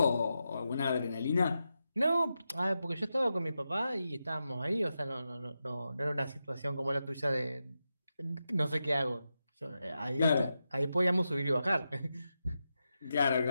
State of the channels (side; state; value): both; inverted; correlation -0.89